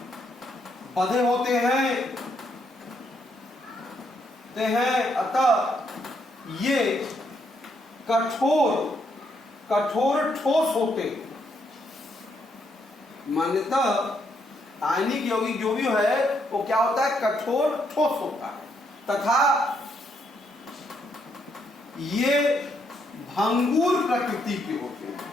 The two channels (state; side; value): normal; both; correlation 0.75